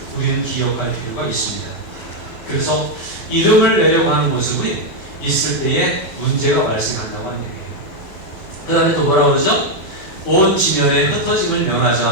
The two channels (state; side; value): late; right; 11 ms